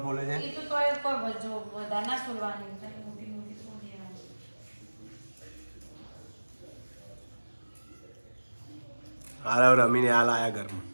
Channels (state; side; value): inverted; both; correlation -1.00